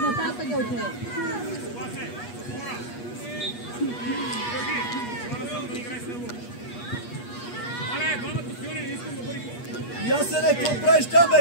Нататък отиде. Ясене, какво правиш там,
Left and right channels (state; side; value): late; right; 8.3 ms